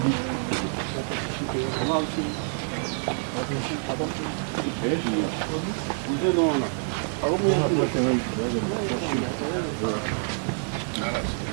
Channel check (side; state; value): left; silent; 60 dB below the other